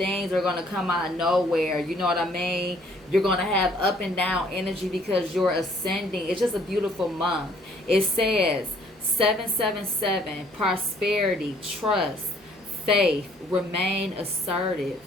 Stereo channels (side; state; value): both; normal; correlation 0.61